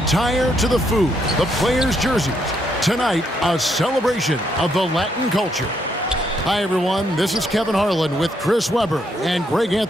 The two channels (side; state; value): both; normal; correlation 0.75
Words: to the food, the players' jerseys, tonight a celebration of the Latin culture. Hi everyone, this is Kevin Harlan with Chris Webber and Greg